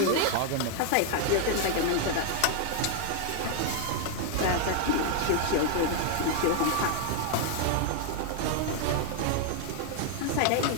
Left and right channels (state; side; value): different; both; correlation 0.00